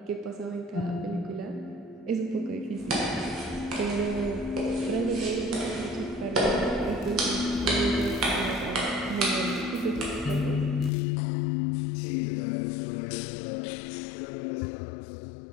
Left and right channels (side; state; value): right; drops out; at 10.9 s